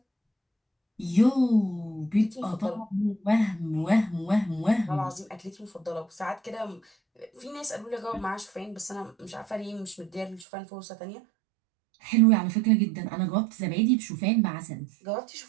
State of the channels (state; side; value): drops out; left; at 10.5 s